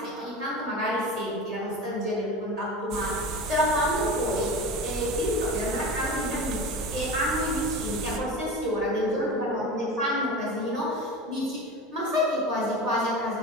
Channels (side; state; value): both; normal; correlation 0.30